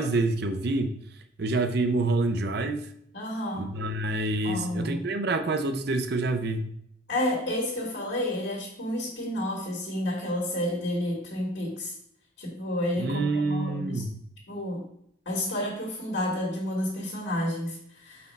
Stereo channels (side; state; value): both; normal; correlation 0.51